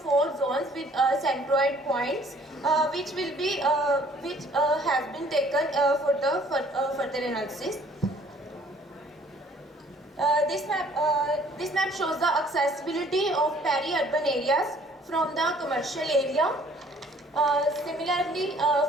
zones with centroid points, which has been taken for the further analysis. This map shows the accessibility of peri-urban areas from the commercial area. Similarly,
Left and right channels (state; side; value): normal; both; correlation 0.58